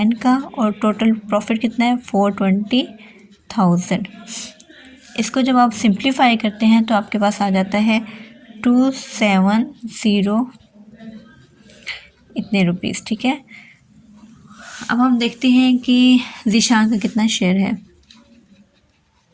का, और टोटल प्रॉफिट कितना है 420,000। इसको जब आप सिंप्लीफाई करते हैं तो आपके पास आ जाता है 270 इतने रुपीज़। ठीक है, अब हम देखते हैं कि ज़ीशान का कितना शेयर है।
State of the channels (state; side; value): identical; both; correlation 1.00